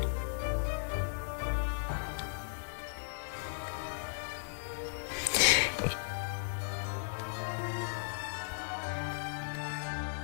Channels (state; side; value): silent; right; digital silence